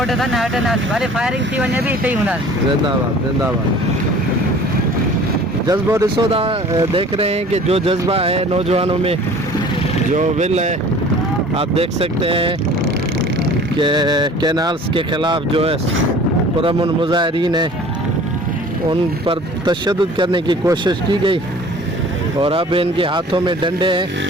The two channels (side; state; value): both; normal; correlation 0.47